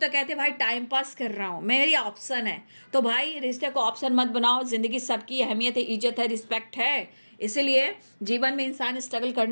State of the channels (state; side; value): inverted; both; correlation -1.00